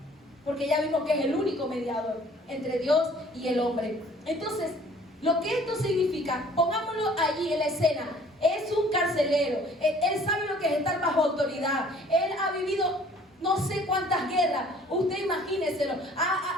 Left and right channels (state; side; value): normal; both; correlation 0.54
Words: Porque ya vimos que es el único mediador entre Dios y el hombre. Entonces, lo que esto significa, pongámoslo allí en la escena, es un carcelero. Él sabe lo que es estar bajo autoridad. Él ha vivido no sé cuántas guerras, usted imagíneselo,